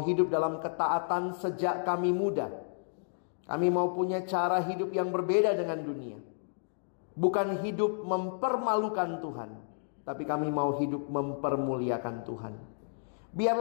hidup dalam ketaatan sejak kami muda. Kami mau punya cara hidup yang berbeda dengan dunia. Bukan hidup mempermalukan Tuhan, tapi kami mau hidup mempermuliakan Tuhan.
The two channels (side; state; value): right; silent; digital silence